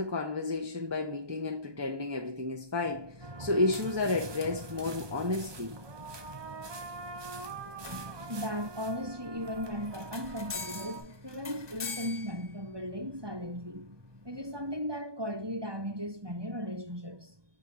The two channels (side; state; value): left; late; 1.2 ms